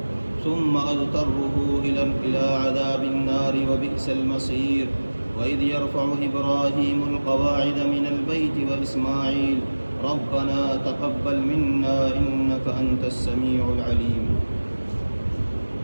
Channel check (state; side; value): inverted; both; correlation -1.00